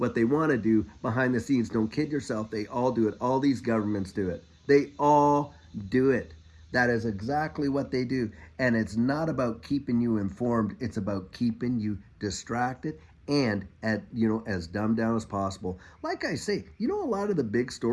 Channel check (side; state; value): both; identical; correlation 1.00